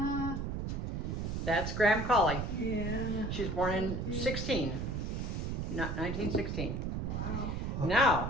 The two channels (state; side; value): noise; right; rumble, 2 dB below the sound